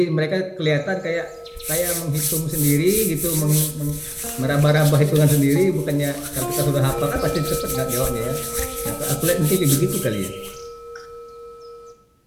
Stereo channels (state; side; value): identical; both; correlation 1.00